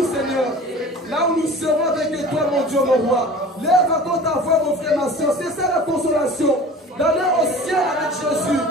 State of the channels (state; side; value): normal; both; correlation 0.41